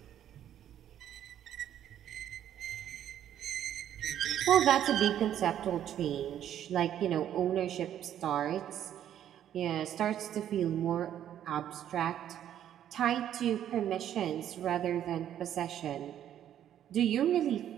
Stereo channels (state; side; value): quieter; left; 10.7 dB